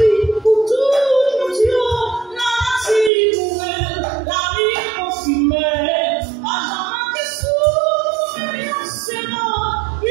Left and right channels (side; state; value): left; drops out; at 3.1 s